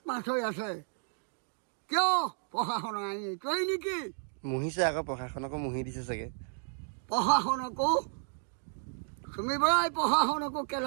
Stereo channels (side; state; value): left; silent; digital silence